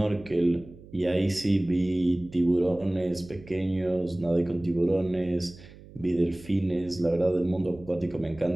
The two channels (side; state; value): right; noise; hum, 20 dB below the sound